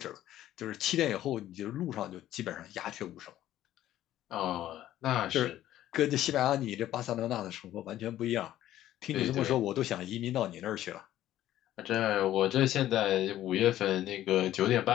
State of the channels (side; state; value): right; quieter; 13.2 dB